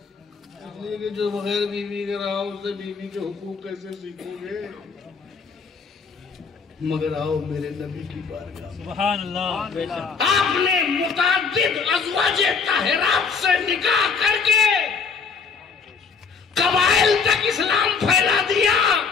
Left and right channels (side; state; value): right; quieter; 5.4 dB